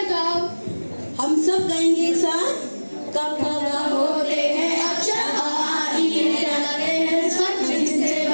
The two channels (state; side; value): inverted; both; correlation -1.00